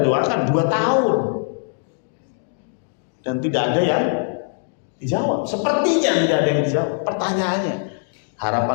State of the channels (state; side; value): silent; right; digital silence